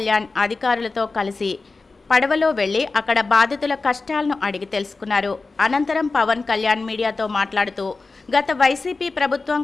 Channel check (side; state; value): right; quieter; 3.8 dB